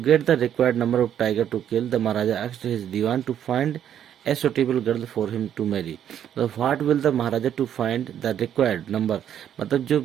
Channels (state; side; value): quieter; left; 9.8 dB